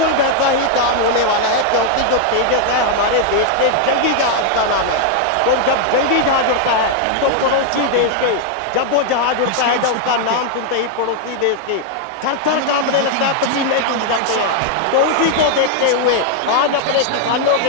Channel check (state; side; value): different; both; correlation 0.00